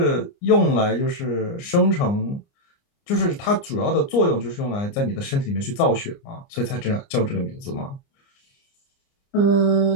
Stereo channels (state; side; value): late; right; 29 ms